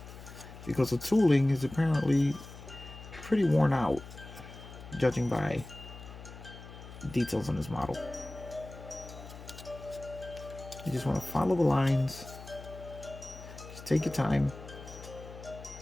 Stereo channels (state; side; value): noise; left; hum, 14 dB below the sound